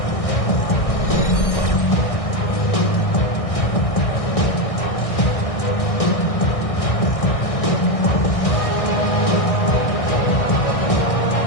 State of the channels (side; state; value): right; late; 1.6 ms